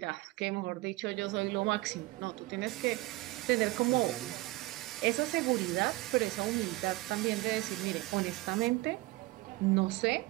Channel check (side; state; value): left; quieter; 20.3 dB